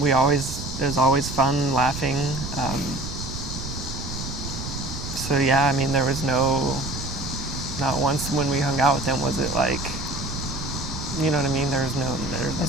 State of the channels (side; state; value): right; noise; rumble, 8 dB below the sound